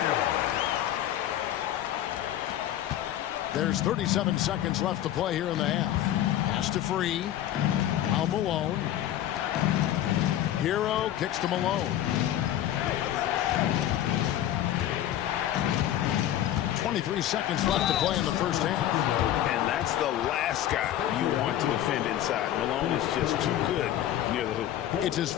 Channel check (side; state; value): right; quieter; 12.2 dB